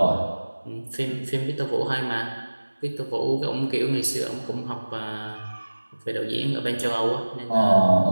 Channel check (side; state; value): both; inverted; correlation -1.00